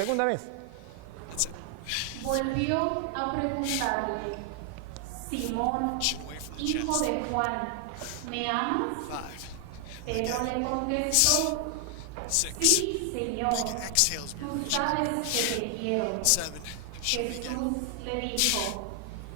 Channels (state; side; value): different; both; correlation 0.00